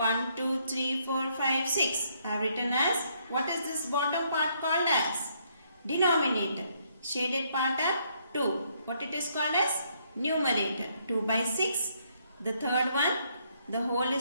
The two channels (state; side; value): inverted; both; correlation -0.71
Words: 2, 3, 4, 5, 6. I have written as, what is this bottom part called as? Denominator. Shaded part are 2. What it is called as? Numerator. 2 by 6. The third one, the whole